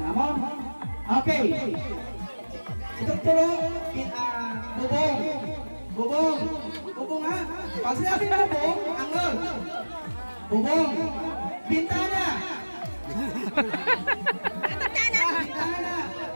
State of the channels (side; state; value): both; inverted; correlation -1.00